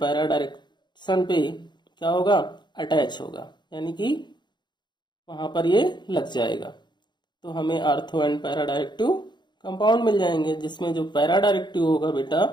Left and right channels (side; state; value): right; late; 0.21 ms